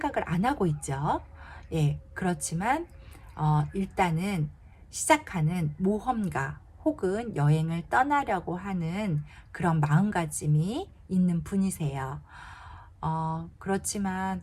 안 하고 있죠. 예, 그렇지만 일단은 시작하는 모험가 혹은 여행을 떠나려고 하는 그런 마음가짐이 있는 분이세요. 그렇지만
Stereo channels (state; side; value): identical; both; correlation 1.00